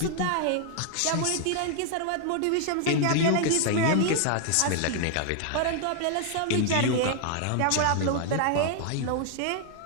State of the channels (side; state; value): both; different; correlation 0.00